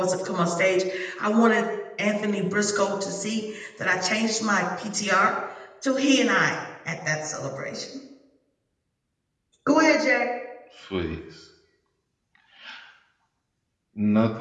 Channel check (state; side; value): identical; both; correlation 1.00